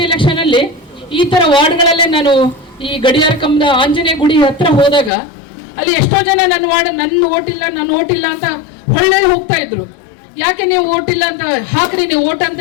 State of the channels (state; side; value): drops out; right; at 5.1 s